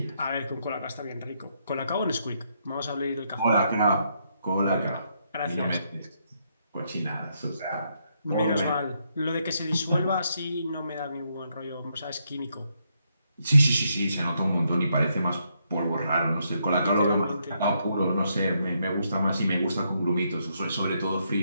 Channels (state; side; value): inverted; both; correlation -0.77